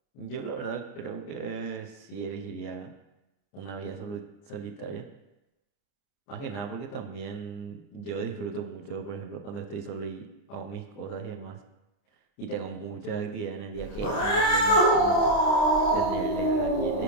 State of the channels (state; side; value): late; right; 30 ms